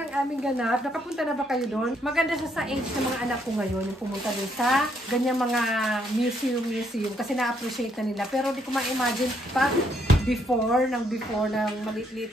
aming ganap. Nakapunta na ba kayo doon? Maganda siya sa age ng mga anak ko ngayon. Yung pumunta doon sa ganyang mga museum. Kasi na-appreciate na nila. Pero di ko ma-imagine pa before ng maliit-liit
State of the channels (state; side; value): normal; both; correlation 0.72